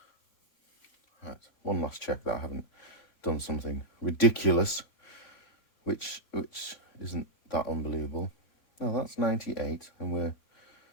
Right, one last check that I haven't done something ridiculous, which isn't that unbelievable. No, that's 98, and we're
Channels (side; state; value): right; late; 3.5 ms